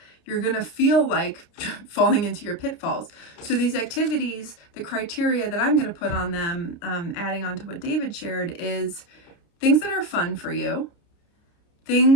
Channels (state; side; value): late; right; 30 ms